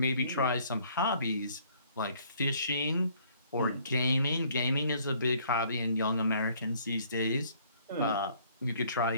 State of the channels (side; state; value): both; inverted; correlation -0.61